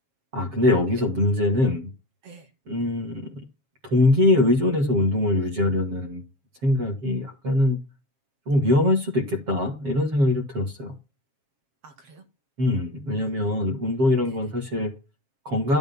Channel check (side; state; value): left; late; 7.4 ms